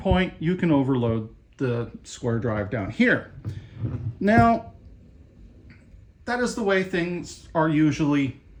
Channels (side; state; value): both; identical; correlation 1.00